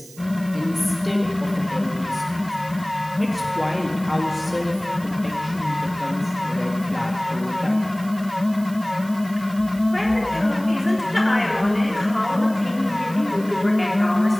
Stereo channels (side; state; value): right; noise; hiss, 20 dB below the sound